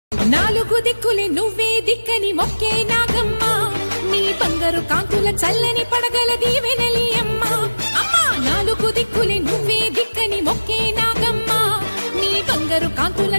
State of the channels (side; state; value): both; inverted; correlation -1.00